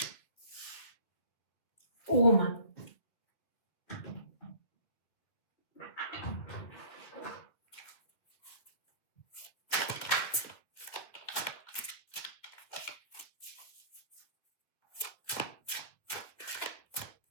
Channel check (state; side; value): late; right; 2.4 ms